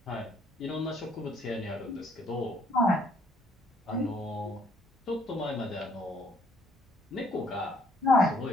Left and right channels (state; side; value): normal; both; correlation 0.64